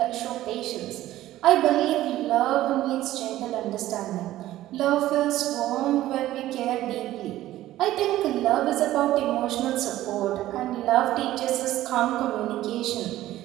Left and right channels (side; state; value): left; quieter; 14.7 dB